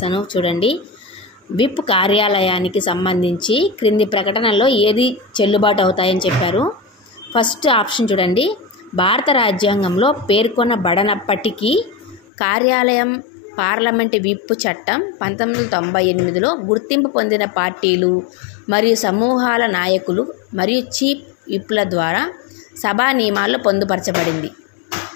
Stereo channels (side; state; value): right; drops out; at 12.2 s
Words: చూడండి, విప్ కార్యాలయానికి సంబంధించి క్రింది ప్రకటనల్లో ఏది చెల్లుబాటు అవుతాయని చెప్పారు. ఫస్ట్ ఆప్షన్ చూడండి, భారత రాజ్యాంగంలో పేర్కొనబడనప్పటికీ కార్యాలయం పార్లమెంటు విప్ చట్టం 1998లో గుర్తింపు పొందిన పార్టీలు మరియు సమూహాల నాయకులు మరియు చీఫ్ విప్ల ద్వారా సభా నియమాల్లో పొందుపరచబడింది.